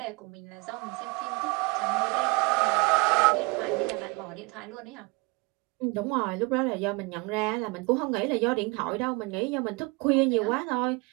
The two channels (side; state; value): left; quieter; 27.9 dB